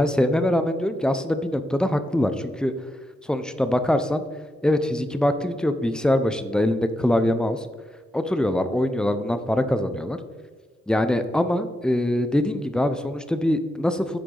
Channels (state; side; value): normal; both; correlation 0.85